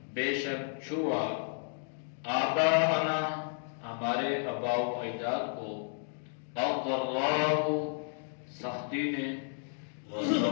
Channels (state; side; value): silent; right; digital silence